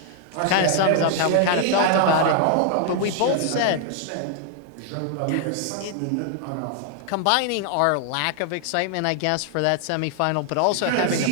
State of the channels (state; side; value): different; both; correlation 0.00